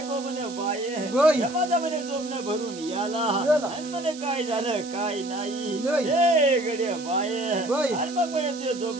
म्हणे बाये माझा म्हणे जोमनं भरून याला आणि म्हणे काय झालं काय नाही हे गड्या बाये आणि मग म्हणे ते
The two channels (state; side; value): noise; right; hiss, 15 dB below the sound